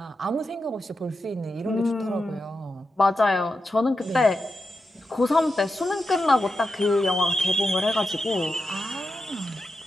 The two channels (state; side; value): normal; both; correlation 0.88